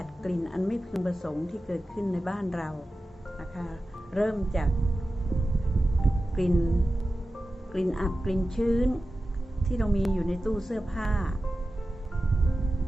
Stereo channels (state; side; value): normal; both; correlation 0.94